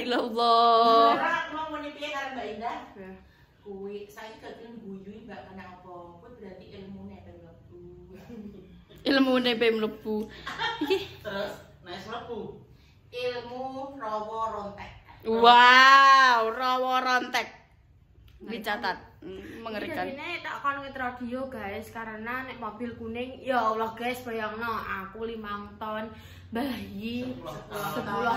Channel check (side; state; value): both; identical; correlation 1.00